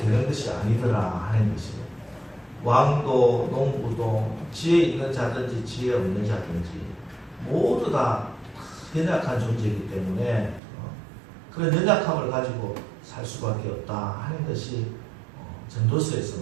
것이 아니더라 하는 것이에요. 왕도 농부도 지혜 있는 자든지 지혜 없는 자든지 모두 다 연약한 존재이기 때문에 그런 연약함을 가지고 살 수밖에 없다 하는 것이 전도서에서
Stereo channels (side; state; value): left; drops out; at 10.6 s